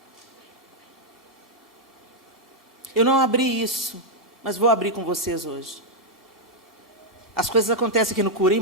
Eu não abri isso, mas vou abrir com vocês hoje. As coisas acontecem aqui no Cura, hein,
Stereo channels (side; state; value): both; normal; correlation -0.03